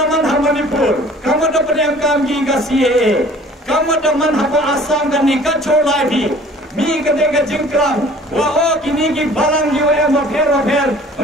Manipur kamadaman em kam gi ka CA kamadaman hapa Assam ka ni ka chola bi mi ka de ka jingkram wa o kini ki balang yo em affair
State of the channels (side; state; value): both; normal; correlation 0.50